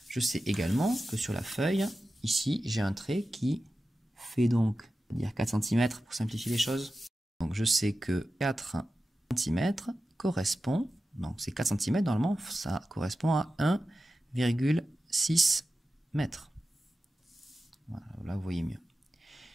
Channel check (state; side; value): normal; both; correlation 0.93